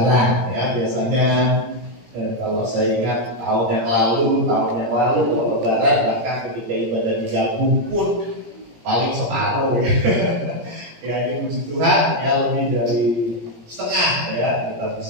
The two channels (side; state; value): left; late; 17 ms